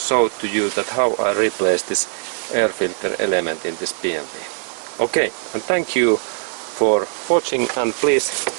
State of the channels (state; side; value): silent; left; digital silence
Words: to you that how I replace this air filter element in this BMW. Okay, and thank you for watching, and please